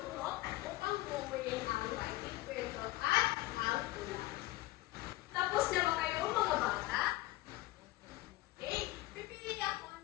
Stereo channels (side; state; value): right; quieter; 18.6 dB